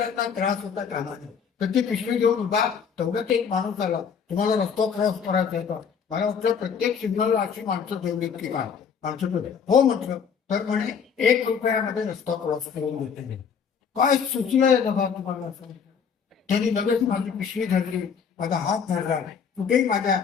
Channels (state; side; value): quieter; right; 6.7 dB